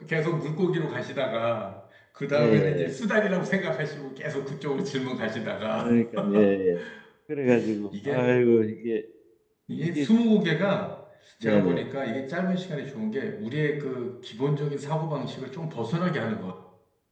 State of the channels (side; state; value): both; identical; correlation 1.00